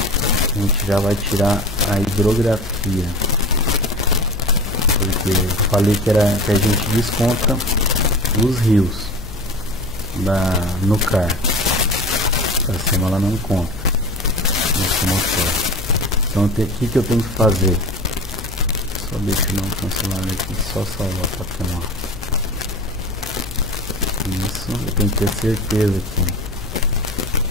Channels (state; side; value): noise; left; hum, 12 dB below the sound